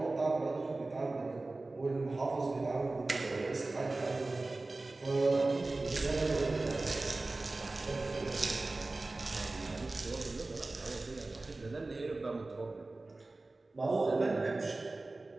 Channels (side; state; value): left; quieter; 3.2 dB